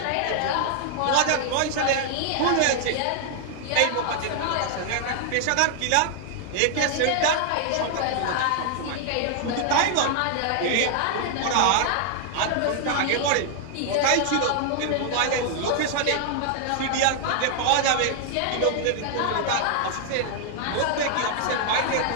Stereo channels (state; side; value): different; both; correlation 0.00